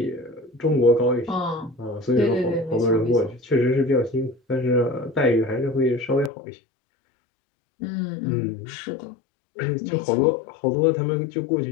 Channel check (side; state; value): right; drops out; at 6.3 s